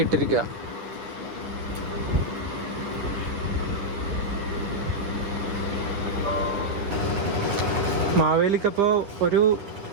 ഇട്ടിരിക്കുക. മാവേലിക്കപ്പോൾ ഒരു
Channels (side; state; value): left; late; 10 ms